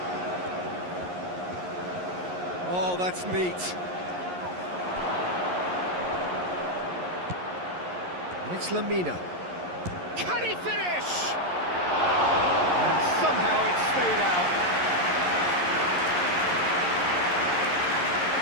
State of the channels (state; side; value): late; left; 11 ms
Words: Oh, that's neat. And it's Lamina. Can he finish? And somehow it stayed out.